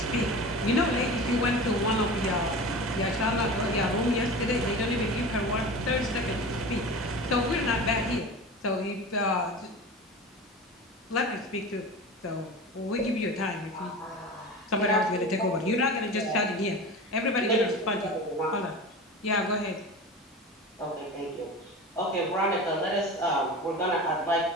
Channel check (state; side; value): normal; both; correlation 0.32